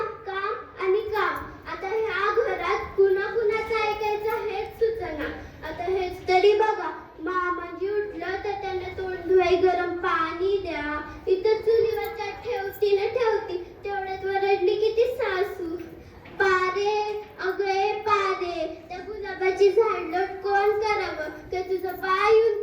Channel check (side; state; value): both; identical; correlation 1.00